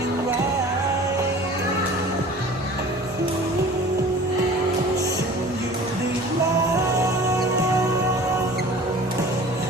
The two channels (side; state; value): both; normal; correlation 0.44